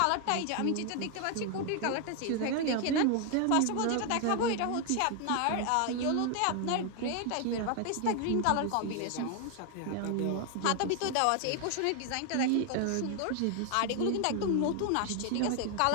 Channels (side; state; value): both; different; correlation 0.00